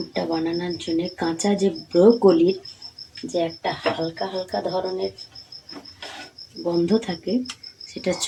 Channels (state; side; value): identical; both; correlation 1.00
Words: বানানোর জন্য কাঁচা যে ব্রোকলির যে একটা হালকা হালকা ধরনের গন্ধ থাকে, সেটা